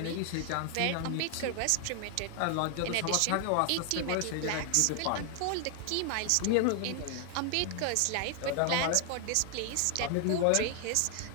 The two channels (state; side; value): different; both; correlation 0.00